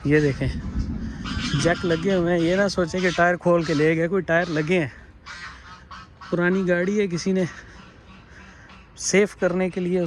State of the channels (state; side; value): identical; both; correlation 1.00